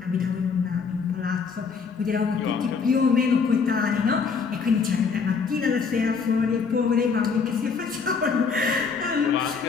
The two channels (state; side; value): quieter; right; 5.4 dB